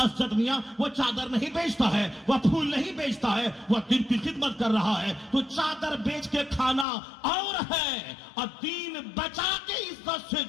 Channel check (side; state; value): right; drops out; at 6.9 s